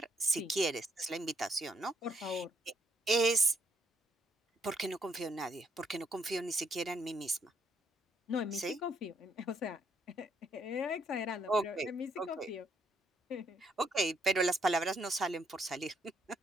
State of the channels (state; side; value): normal; both; correlation 0.72